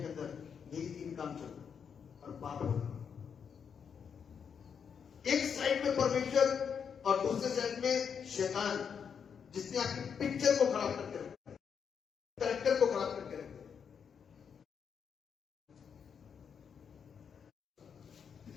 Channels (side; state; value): right; quieter; 7.0 dB